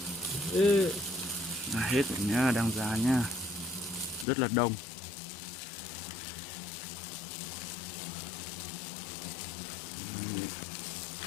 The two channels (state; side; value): drops out; right; at 4.2 s